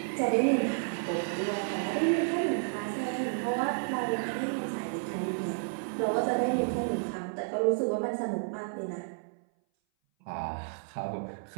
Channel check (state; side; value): silent; left; 57 dB below the other